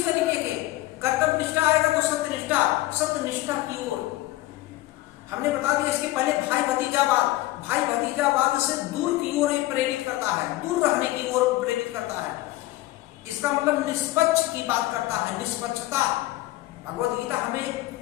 तरीके के कर्तव्य निष्ठा आएगा तो सत्य निष्ठा की ओर हमने बता दिया। इसके पहले भाई भतीजावाद से दूर की ओर प्रेरित करता है, दूर रहने की ओर प्रेरित करता है। इसका मतलब निष्पक्ष की बात करता है, निष्पक्षता। भगवत गीता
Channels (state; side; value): quieter; right; 17.4 dB